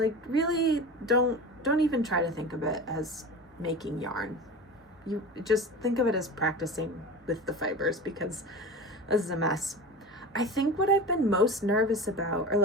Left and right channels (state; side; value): normal; both; correlation 0.31